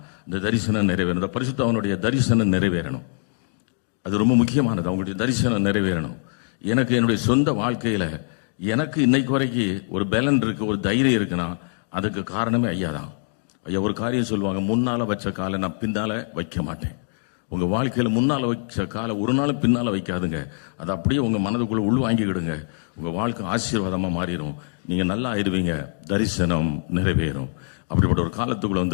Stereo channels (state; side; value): silent; right; digital silence